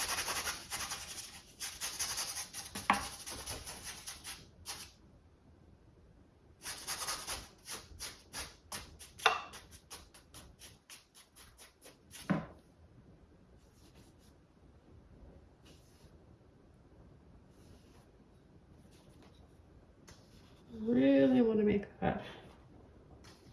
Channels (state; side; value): identical; both; correlation 1.00